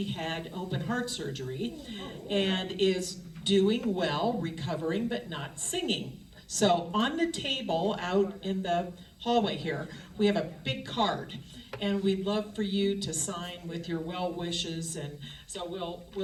had open heart surgery and is doing well, recovering, but not singing. So on the table out in the hallway here, we have a big card, and we'd love for you to sign with your well wishes. And so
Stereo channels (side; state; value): both; identical; correlation 1.00